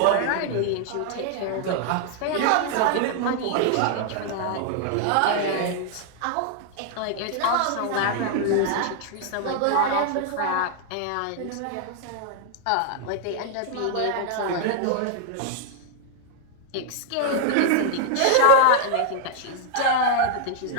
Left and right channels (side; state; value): both; different; correlation 0.00